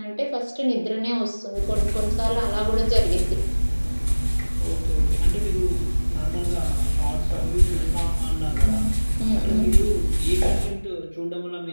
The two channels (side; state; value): both; inverted; correlation -1.00